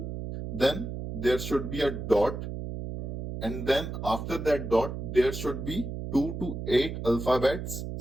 Then there should be a dot. And then after that dot, there should be 2 to 8 alphabets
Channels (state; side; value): noise; right; hum, 6 dB below the sound